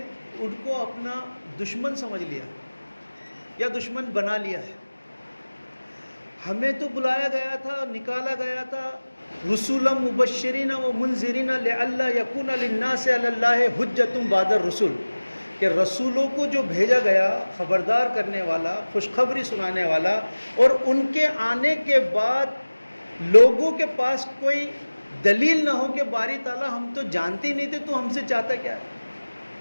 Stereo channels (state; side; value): inverted; both; correlation -1.00